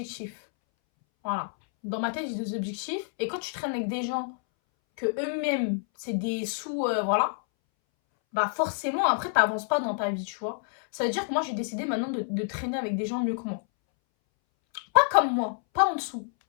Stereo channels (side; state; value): right; silent; 59 dB below the other